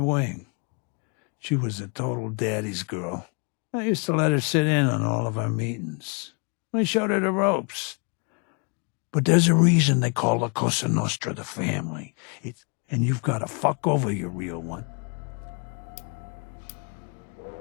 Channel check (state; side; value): quieter; right; 36.4 dB